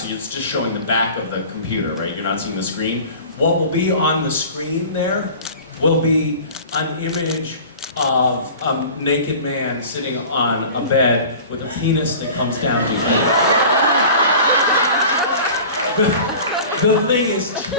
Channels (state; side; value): inverted; both; correlation -0.40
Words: it's just showing the back of the computer, right? You're not seeing the screen. What will be on the screen there will be an image of a naked man sitting on a bed with a penis that comes down to feet. The thing is